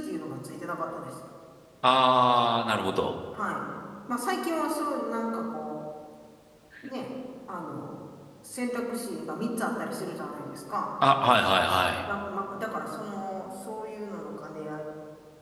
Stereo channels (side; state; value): both; identical; correlation 1.00